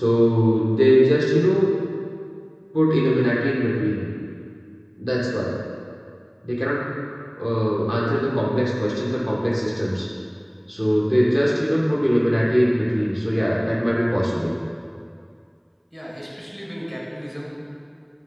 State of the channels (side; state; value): both; identical; correlation 1.00